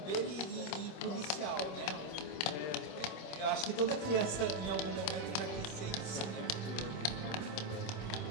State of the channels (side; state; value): right; late; 26 ms